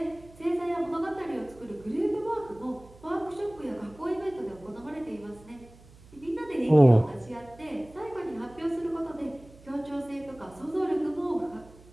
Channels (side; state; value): right; noise; hum, 23 dB below the sound